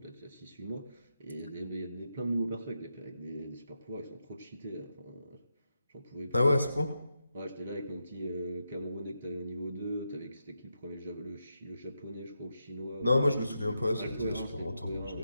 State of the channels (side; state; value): both; inverted; correlation -0.86